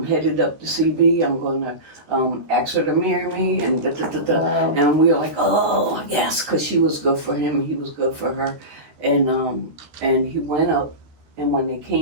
headed up to CB. I'm going to ask her to marry me." And Wow. And we were like, "Oh, yes," because she was good for him. He was good for her. And he went up, and when they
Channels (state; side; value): late; left; 13 ms